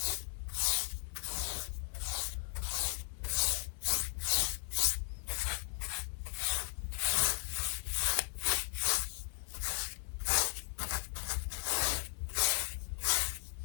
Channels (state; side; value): silent; right; 53 dB below the other